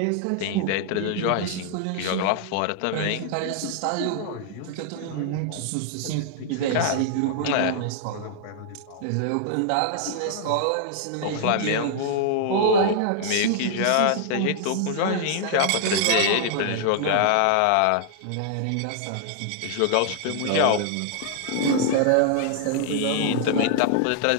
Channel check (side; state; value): both; different; correlation -0.01